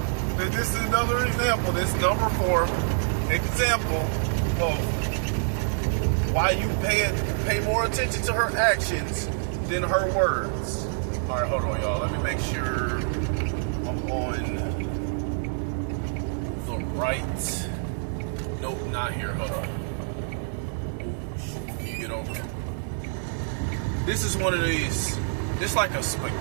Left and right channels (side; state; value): left; silent; 60 dB below the other